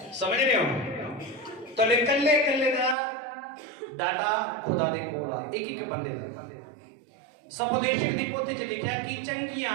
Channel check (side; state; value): left; drops out; at 3.0 s